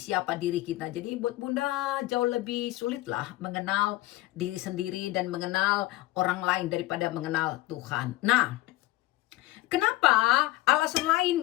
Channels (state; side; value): quieter; right; 17.7 dB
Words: diri kita. Jadi buat Bunda jauh lebih sulit lah mengenal diri sendiri dan mengenal orang lain daripada mengenal Tuhan. Nah, kenapa alasan